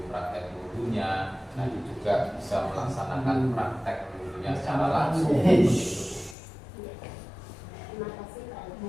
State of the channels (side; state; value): right; drops out; at 6.4 s